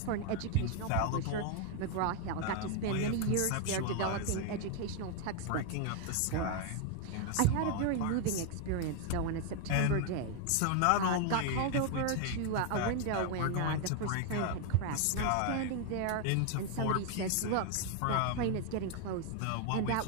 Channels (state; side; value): different; both; correlation 0.01